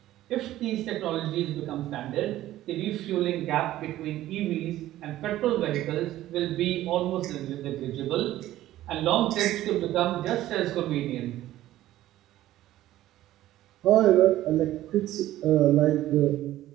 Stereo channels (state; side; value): quieter; left; 14.4 dB